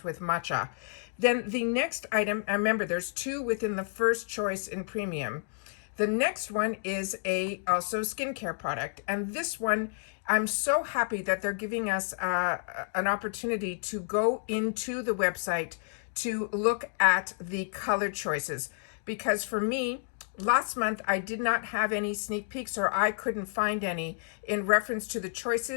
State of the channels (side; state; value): right; silent; digital silence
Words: with matcha. Then the next item, and remember there's two within the first choice in premium. The next one is also skincare product, and this one I'm so happy that they're giving us an opportunity to go into the website to look at the color choices, because for me, last month, I did not have any sneak peeks, or I couldn't find any in reference to the